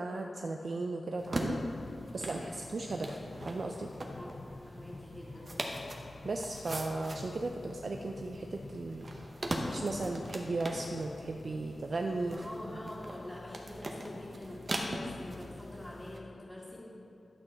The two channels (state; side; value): normal; both; correlation 0.94